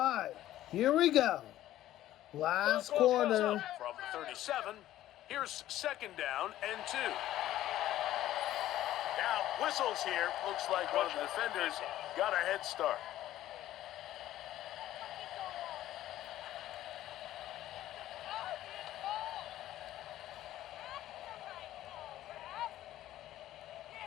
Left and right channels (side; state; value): right; quieter; 13.7 dB